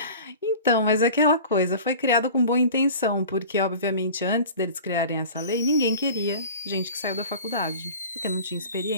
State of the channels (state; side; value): inverted; both; correlation -0.40